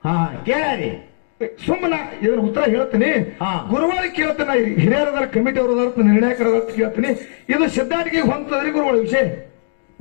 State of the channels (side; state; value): right; silent; 67 dB below the other